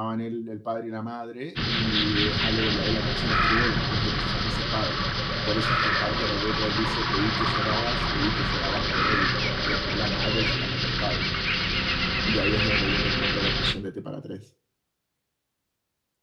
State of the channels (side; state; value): both; identical; correlation 1.00